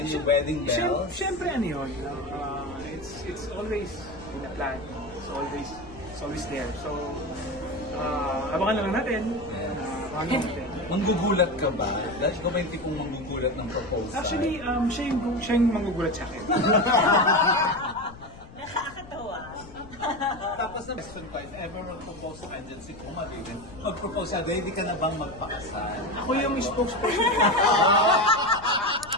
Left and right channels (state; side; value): noise; left; rumble, 18 dB below the sound